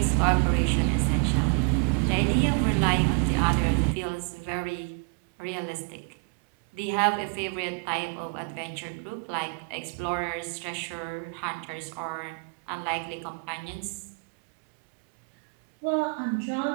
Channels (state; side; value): quieter; left; 34.5 dB